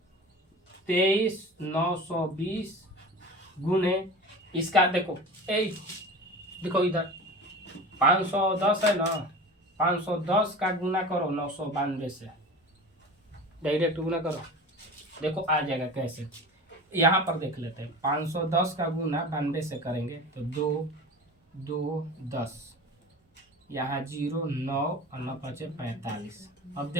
23,920 गुने इसका देखो देखो इधर 510 है ना 510 का गुना करो 992 से डायरेक्ट गुना करो देखो आ जाएगा कैसे। यहाँ पर देख लेते हैं 510 का गुना 92 से करेंगे तो 2 2 10 यहाँ 0 9 और 9 5 45। अब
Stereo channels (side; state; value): both; normal; correlation 0.34